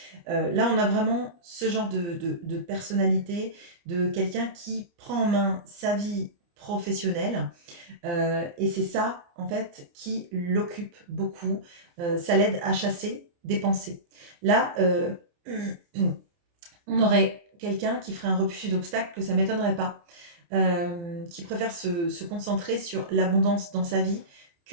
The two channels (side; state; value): left; late; 29 ms